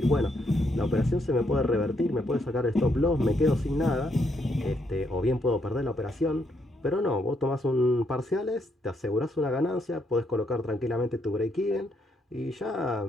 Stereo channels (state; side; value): normal; both; correlation 0.75